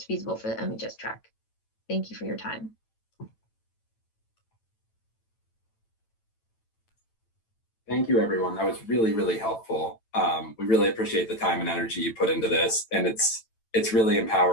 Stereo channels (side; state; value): right; late; 9.0 ms